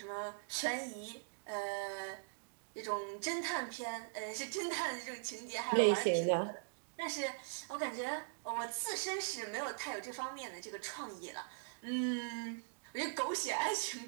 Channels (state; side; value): silent; left; digital silence